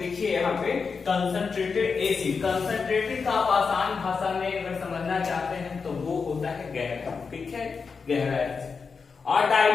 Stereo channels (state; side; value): quieter; right; 5.2 dB